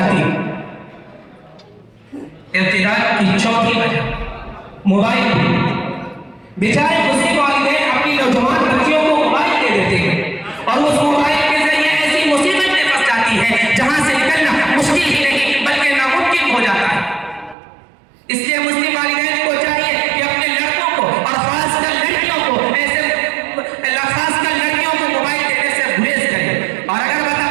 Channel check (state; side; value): drops out; left; at 17.6 s